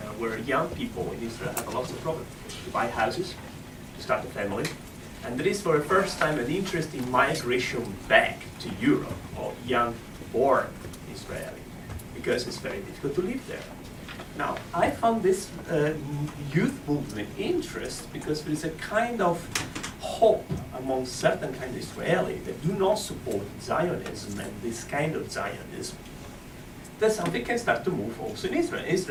where young people in Israel have lots of problems to buy houses, to start a family. And there is for the first time an interest in migration back to Europe of young born Israeli, because it's very difficult to live there. Now, I found this youth movement interest because there is a kind of hope among certain kind of Israeli that do not support Zionism and this kind of Zionism. that something can start to move also in Israel.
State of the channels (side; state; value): both; identical; correlation 1.00